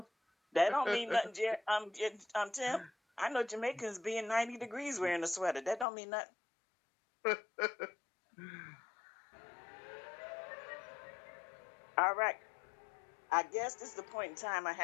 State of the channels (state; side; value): drops out; right; at 5.9 s